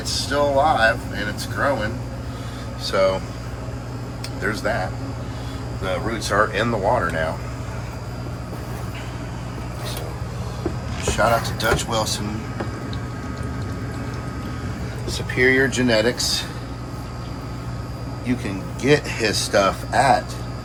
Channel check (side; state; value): both; identical; correlation 1.00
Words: still alive and it's growing, so there's that. The roots are in the water now. So shout out to Dutch Wilson, Superior Genetics. You can get his stuff at